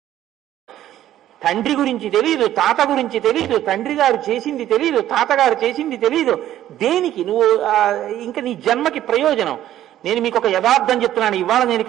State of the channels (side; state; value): left; quieter; 12.5 dB